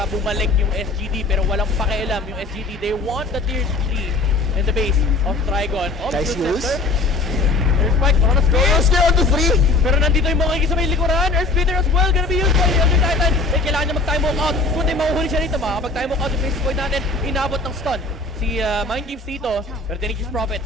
bumalik yung SGD, pero walang pakialam yung SGD. They want the tier 3 in the base of TRIGON. Nice use. There's Spike, Chronosphere on the 3! Pero nandito yung mga sa may likuran. Earth Splitter as well, gonna be used by the Elder Titan. Eh, kailangan niya mag-time walk out. Kung di mahuhuli siya rito, makakapag-time walk out yung face point natin. Inabot ng stun si Mind Games dito. Pero Nature's Prophet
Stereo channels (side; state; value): right; quieter; 3.5 dB